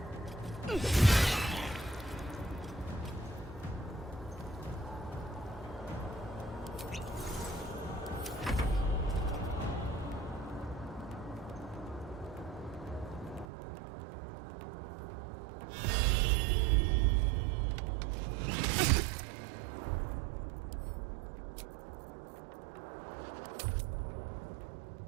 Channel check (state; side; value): drops out; left; at 13.5 s